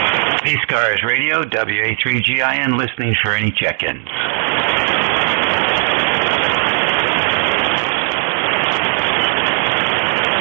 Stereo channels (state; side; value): silent; left; digital silence